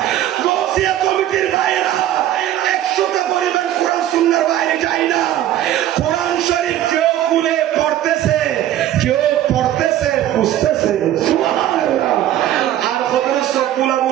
গৌসিয়া কমিটির বাইরে 100টা পরিমাণ কোরআন সুন্নাহর বাইরে যায় না। কোরআন শরীফ কেউ খুলে পড়তেছে কেউ পড়তেছে বুঝতেছে সুবহানাল্লাহ। আর কতরে সব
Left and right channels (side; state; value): left; quieter; 12.5 dB